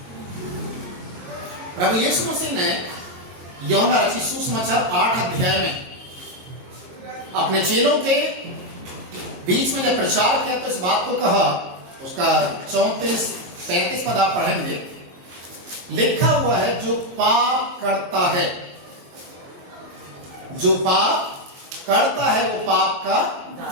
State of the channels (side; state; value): left; late; 22 ms